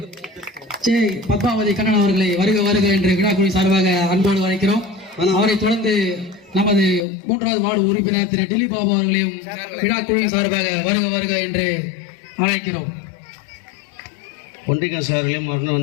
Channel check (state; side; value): drops out; right; at 7.1 s